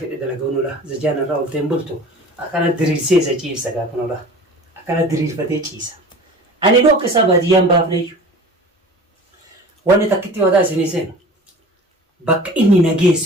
dalagaunudha. Zajaan irraa olteen bultu akkana diriirsee isa ciibsa gaafanudha. Akkana diriirfatee ciisa. Ani dhooqa isaa baadiyyaan baafneeyyu. Wanni takkitti wadaa isinii seenu bakka inni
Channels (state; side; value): normal; both; correlation 0.40